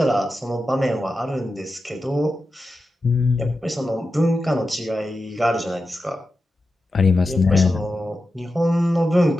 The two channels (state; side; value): normal; both; correlation 0.91